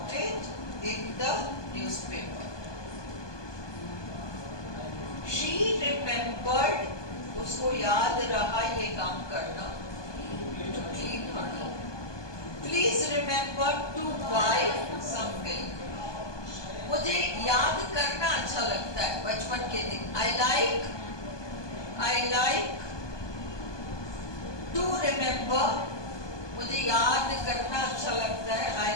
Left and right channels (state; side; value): late; right; 1.2 ms